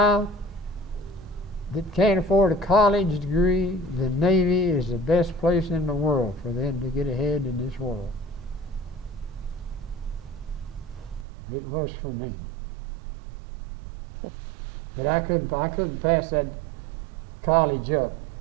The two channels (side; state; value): left; drops out; at 11.2 s